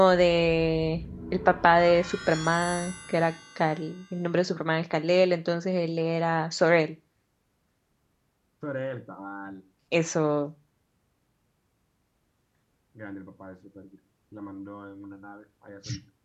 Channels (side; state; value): both; identical; correlation 1.00